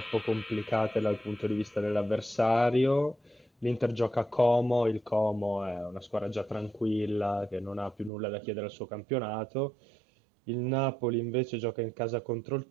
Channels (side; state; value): left; drops out; at 8.1 s